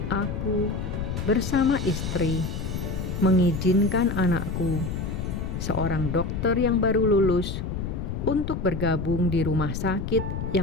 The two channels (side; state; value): left; noise; rumble, 4 dB below the sound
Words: aku bersama istri mengizinkan anakku, seorang dokter yang baru lulus, untuk bergabung di rumah sakit